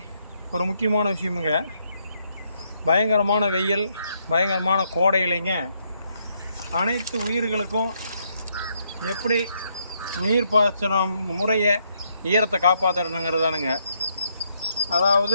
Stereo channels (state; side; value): inverted; both; correlation -0.75